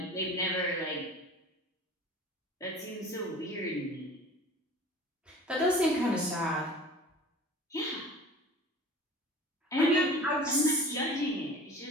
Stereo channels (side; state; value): both; normal; correlation 0.42